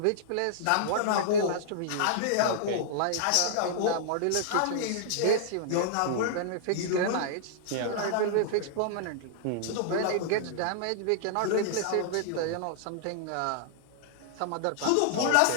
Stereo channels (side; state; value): both; different; correlation -0.01